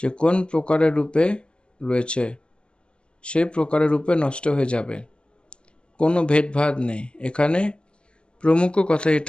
কোন প্রকারের রূপে রয়েছে, সেই প্রকারের রূপে নষ্ট হয়ে যাবে। কোনো ভেদভাদ নেই এখানে। প্রমুখ কথা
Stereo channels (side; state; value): right; late; 0.055 ms